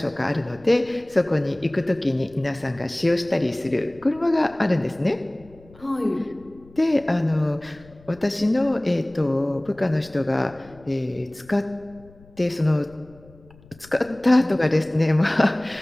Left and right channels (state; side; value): noise; left; rumble, 25 dB below the sound